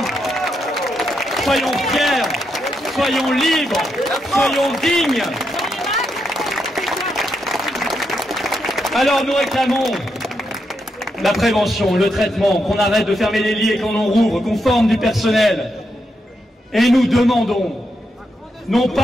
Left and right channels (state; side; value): normal; both; correlation 0.82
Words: soyons fiers, soyons libres, soyons dignes. » Alors nous réclamons la prévention, le traitement, qu'on arrête de fermer les lits et qu'on en rouvre, qu'on forme du personnel. Et nous demandons, non